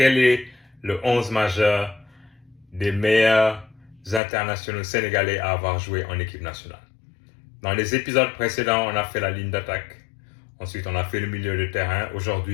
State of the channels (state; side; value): drops out; right; at 4.2 s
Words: est le 11 majeur des meilleurs internationaux sénégalais à avoir joué en équipe nationale? Dans les épisodes précédents, on a fait la ligne d'attaque. Ensuite, on a fait le milieu de terrain.